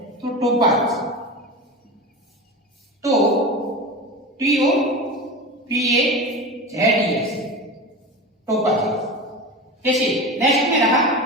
तो टोपाज. तो T O P A Z E S topaz. जैसे नेक्स्ट में रहा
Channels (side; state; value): both; normal; correlation 0.27